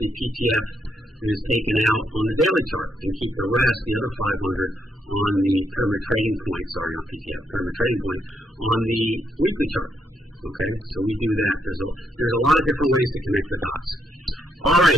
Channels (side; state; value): both; normal; correlation 0.77